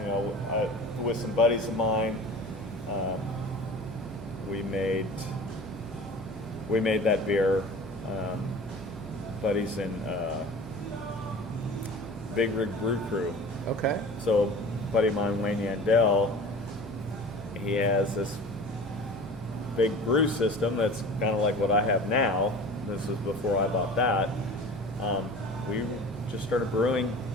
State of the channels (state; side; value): normal; both; correlation 0.39